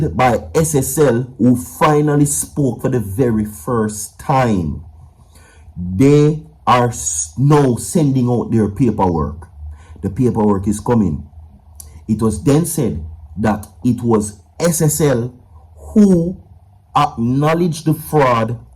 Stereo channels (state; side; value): identical; both; correlation 1.00